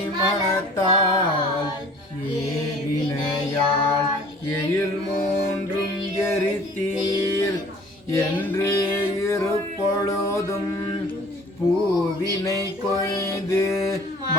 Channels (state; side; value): normal; both; correlation 0.50